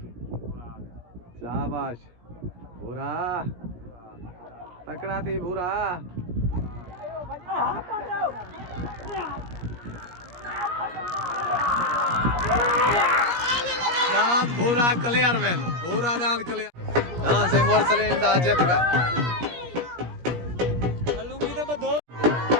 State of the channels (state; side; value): late; left; 17 ms